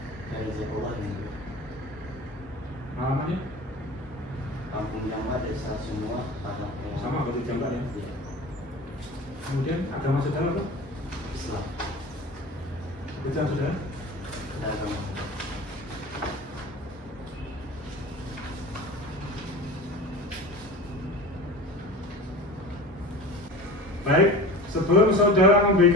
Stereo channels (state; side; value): normal; both; correlation 0.35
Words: Alamatnya? Kampung Jamba, Desa Semua, Tanah Sama berarti Jamba ya? Kemudian agama saudara apa? Islam, Pekerjaan saudara? pedagang. Baik, sebelum saudara